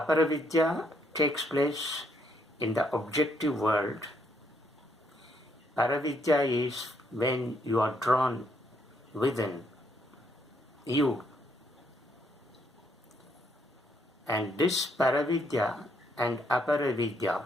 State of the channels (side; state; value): both; normal; correlation 0.72